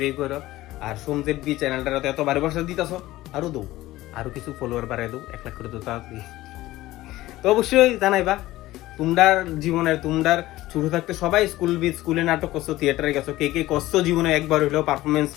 করো। আর সোমজেট বি চ্যানেলটাতে এত ভালোবাসা দিতেছো, আরো দৌ, আরো কিছু ফলোয়ার বাড়াই দৌ, 1 লাখ করে তো তাড়াতাড়ি। তো অবশ্যই জানাইবা তোমরার জীবনের, তোমরার ছোট থাকতে সবাই স্কুলে নাটক করছো, থিয়েটারে গেছো, কে কে করছো জীবনে একবার হইলেও পারফরমেন্স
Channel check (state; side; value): quieter; right; 16.8 dB